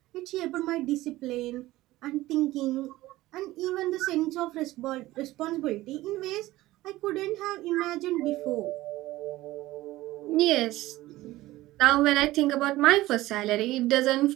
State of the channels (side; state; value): left; quieter; 17.1 dB